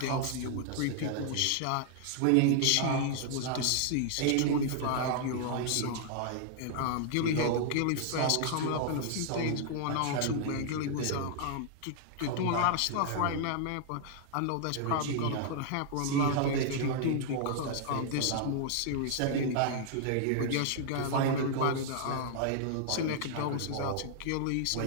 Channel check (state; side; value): different; both; correlation -0.01